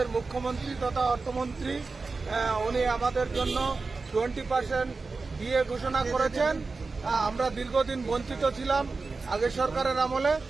মুখ্যমন্ত্রী তথা অর্থমন্ত্রী উনি আমাদের জন্য 20% দিয়ে ঘোষণা করেছেন। আমরা দীর্ঘদিন বঞ্চিত ছিলাম আগের সরকারের আমলে,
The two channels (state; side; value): quieter; left; 4.0 dB